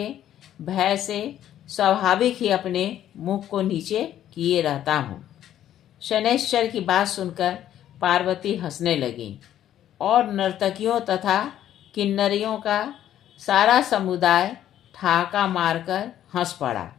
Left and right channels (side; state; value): right; quieter; 11.5 dB